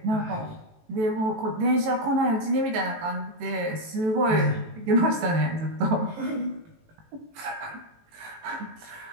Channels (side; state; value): left; late; 18 ms